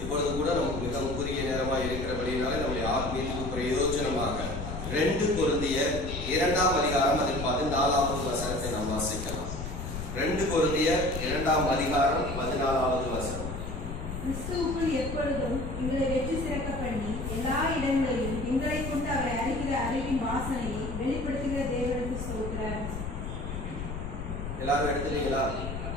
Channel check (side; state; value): left; noise; rumble, 6 dB below the sound